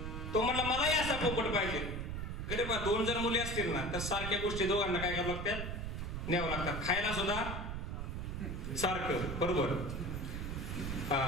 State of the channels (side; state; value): right; noise; rumble, 4 dB below the sound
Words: तो म्हणला मलाही असा पोपट पाहिजे. अरे बा 2 जर मुली असतील ना तर सारख्या गोष्टी दोघांना काय करावं लागतात? न्यावं लागतात. खायला सुद्धा सारखं, बरोबर,